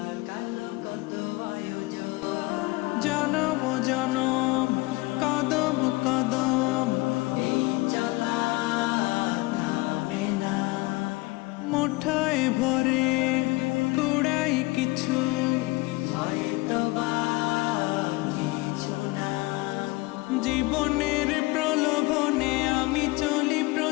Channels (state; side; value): quieter; right; 22.8 dB